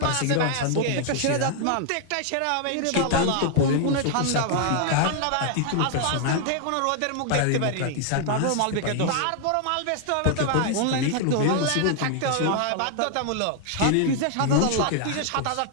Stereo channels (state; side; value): different; both; correlation 0.00